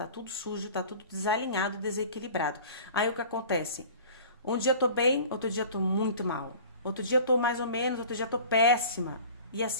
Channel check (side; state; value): both; inverted; correlation -0.42